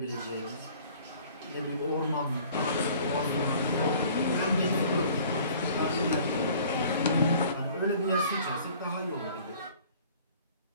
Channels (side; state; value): both; inverted; correlation -0.51